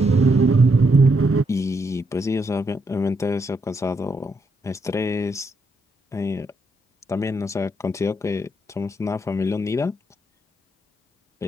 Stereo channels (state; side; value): normal; both; correlation 0.78